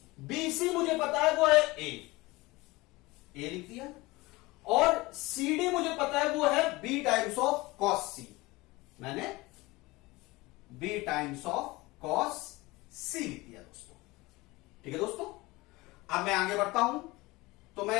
B C मुझे पता है वो है ए लिख दिया, और सी डी मुझे पता है वो है बी टाइम्स ऑफ कॉस सी, मैंने बी टाइम्स ऑफ कॉस सी लिख दिया दोस्तों। ठीक है दोस्तों, अब मैं आगे बढ़ता हूं, तो मैं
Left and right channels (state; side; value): quieter; right; 21.6 dB